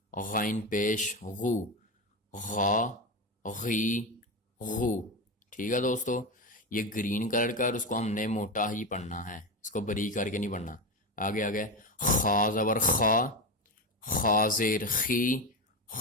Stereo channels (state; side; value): normal; both; correlation 0.17